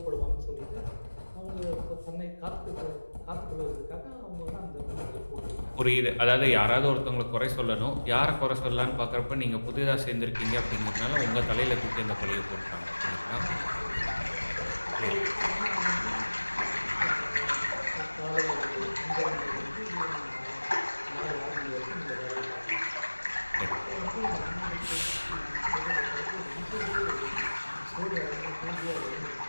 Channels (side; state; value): both; inverted; correlation -1.00